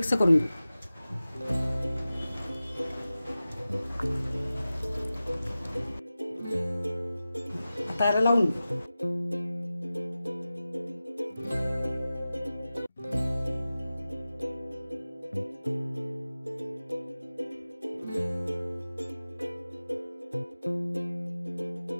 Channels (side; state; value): both; inverted; correlation -0.95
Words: करून घेऊ। आता याला लावून घेऊ।